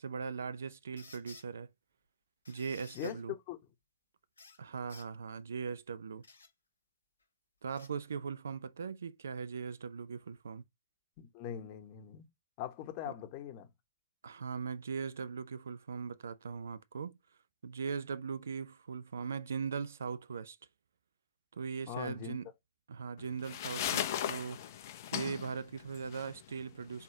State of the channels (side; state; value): both; inverted; correlation -0.63